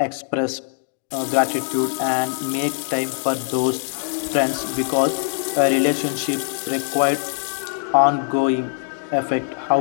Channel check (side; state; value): right; silent; digital silence